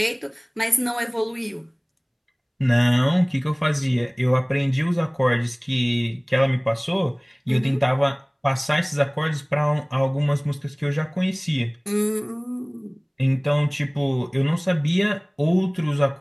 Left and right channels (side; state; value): both; identical; correlation 1.00